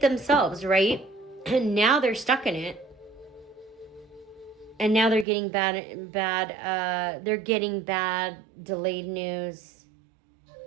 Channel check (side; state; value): left; drops out; at 5.2 s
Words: right? And now they're stuck in it. And now they're getting bad delayed news.